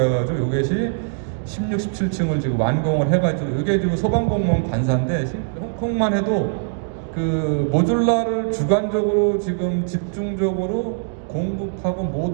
해가지고 이것이 16, 17층을 지금 완공을 해가지고 이게 지금 소방공무원 관사인데 홍콩만 해도 그 모듈라를 주관적으로 지금 집중적으로 공급하고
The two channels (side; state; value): left; silent; digital silence